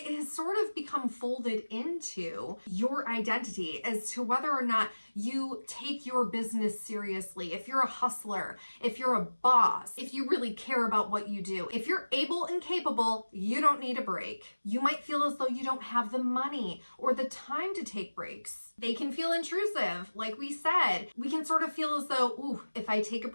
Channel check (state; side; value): inverted; both; correlation -1.00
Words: has sort of become folded into your identity as to whether or not you take your business seriously. If you're a hustler, if you're a boss, if you really care about what you do, if you're able and capable, you don't need a break. You might feel as though you don't have the money or the time to take breaks. They can feel intrusive. Like we said, we can sort of feel as though, ooh, if I take a